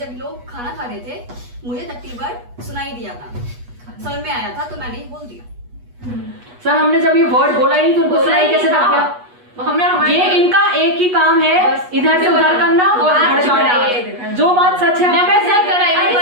लोग खाना खा रहे थे, मुझे टट्टी वर्ड सुनाई दिया था, समझ में आया था तो मैंने बोल दिया। सर हमने जब ये वर्ड बोला ही तो उनको सुनाई कैसे लग गया? ये इनका एक ही काम है, इधर से उधर करना और भड़काना। जो बात सच है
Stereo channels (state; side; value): late; left; 8.2 ms